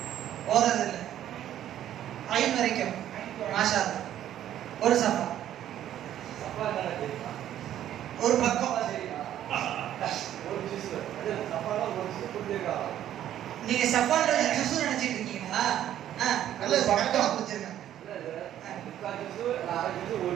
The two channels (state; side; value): quieter; left; 11.5 dB